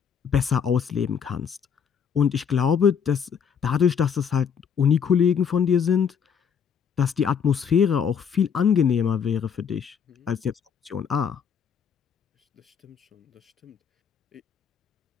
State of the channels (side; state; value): right; quieter; 7.2 dB